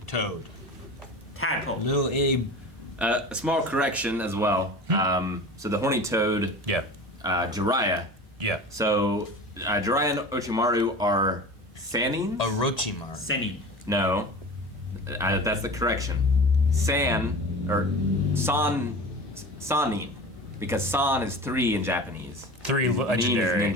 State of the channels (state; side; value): normal; both; correlation 0.34